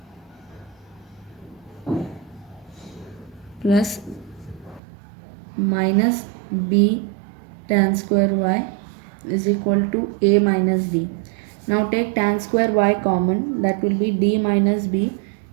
plus minus b tan square y is equal to a minus d. Now take tan square y common, that will be d minus b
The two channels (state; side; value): drops out; left; at 4.8 s